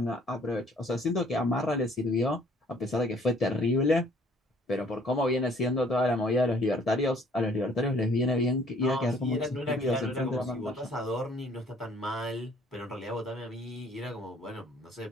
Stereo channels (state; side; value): normal; both; correlation 0.58